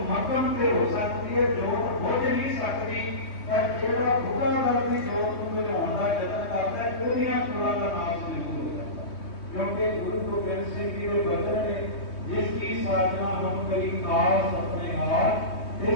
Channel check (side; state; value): right; late; 3.2 ms